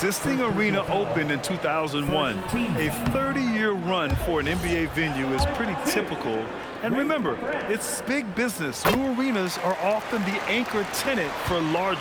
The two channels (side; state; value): both; identical; correlation 1.00